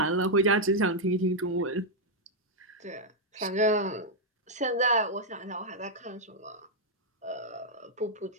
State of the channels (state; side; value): normal; both; correlation -0.03